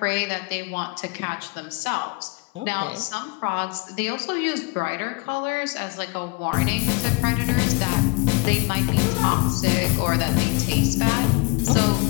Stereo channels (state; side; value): quieter; right; 27.8 dB